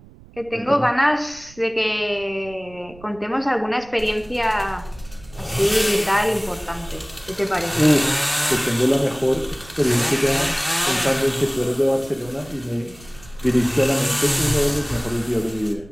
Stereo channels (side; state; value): right; noise; rumble, 22 dB below the sound